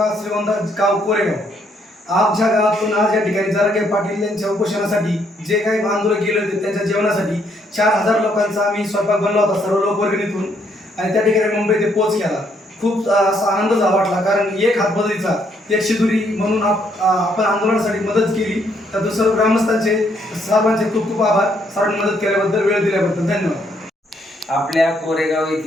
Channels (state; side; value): normal; both; correlation 0.71